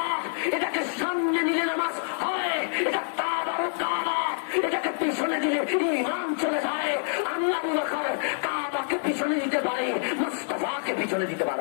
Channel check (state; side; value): silent; right; digital silence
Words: এটাকে সামনে নিলে নামাজ হয়, এটা কাবার কাবা, এটাকে পিছনে দিলে ঈমান চলে যায়। আমি আবু বকর কাবাকে পিছনে দিতে পারি, মুস্তাফাকে পিছনে দিতে